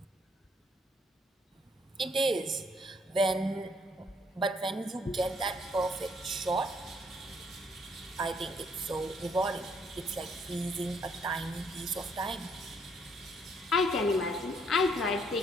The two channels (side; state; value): both; normal; correlation 0.68